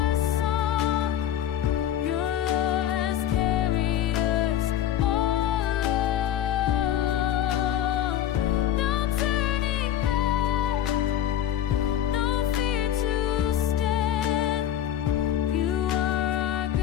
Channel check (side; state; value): right; quieter; 10.9 dB